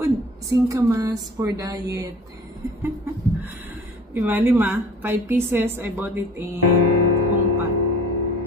singkamas for diet. Diba, 5 pieces. I bought it in Hongpat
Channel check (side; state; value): both; normal; correlation 0.46